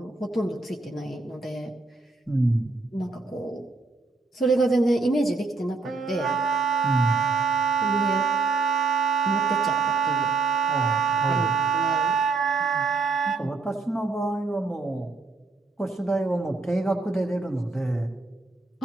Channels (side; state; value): left; quieter; 4.0 dB